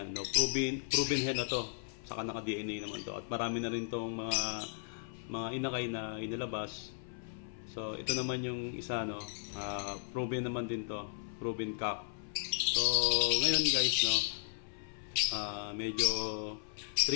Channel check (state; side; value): silent; right; 54 dB below the other